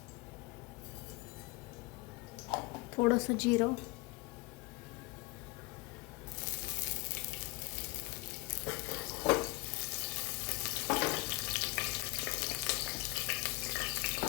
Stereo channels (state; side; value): quieter; right; 24.6 dB